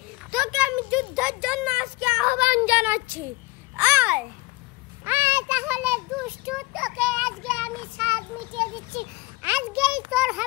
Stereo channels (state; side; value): quieter; right; 22.0 dB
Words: তোকে আমি যুদ্ধের জন্য আজকে আহ্বান জানাচ্ছি। আয় আয়, তাহলে দুষ্টু, তোকে আজকে আমি স্বাদ মিটিয়ে দিচ্ছি। আজকেই তোর